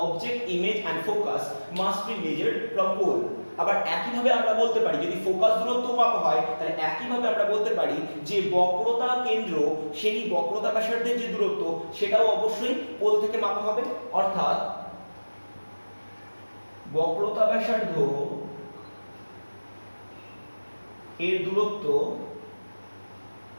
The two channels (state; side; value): inverted; both; correlation -1.00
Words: object, image and focus must be measured from pole। আবার একইভাবে আমরা বলতে পারি, যদি ফোকাস দূরত্ব মাপা হয় তাহলে একইভাবে আমরা বলতে পারি যে বক্রতা কেন্দ্র সেই বক্রতা ব্যাসার্ধের যে দূরত্ব সেটাও অবশ্যই পোল থেকে মাপা হবে। অর্থাৎ বক্রতা ব্যাসার্ধ এর দূরত্ব